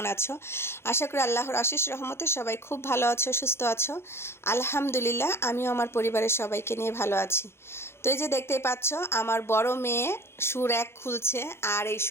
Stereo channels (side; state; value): right; late; 0.12 ms